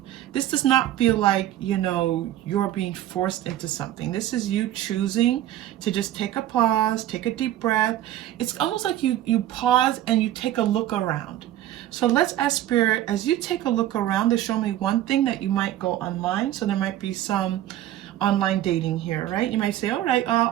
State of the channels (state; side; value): quieter; left; 13.0 dB